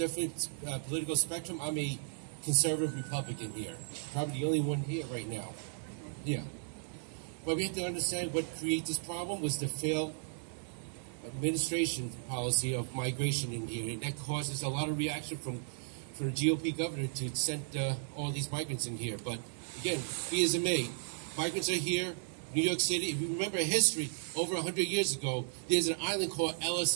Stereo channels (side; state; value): left; silent; digital silence